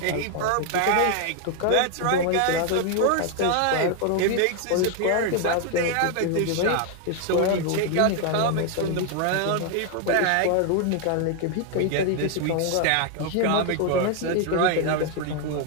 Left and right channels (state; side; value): different; both; correlation 0.00